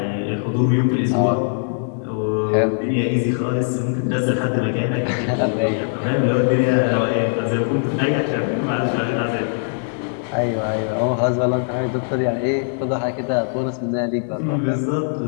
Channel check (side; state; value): right; silent; digital silence